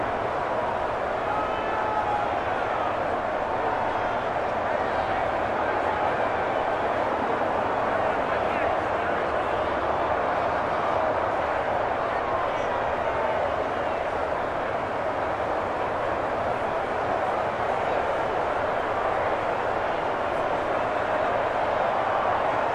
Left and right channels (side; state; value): both; identical; correlation 1.00